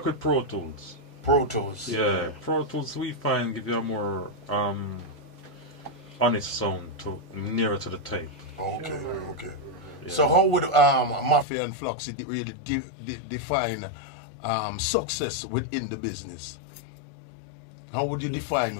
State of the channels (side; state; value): right; drops out; at 11.5 s